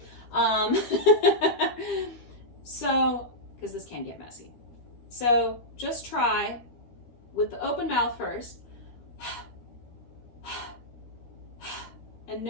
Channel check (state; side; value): late; right; 13 ms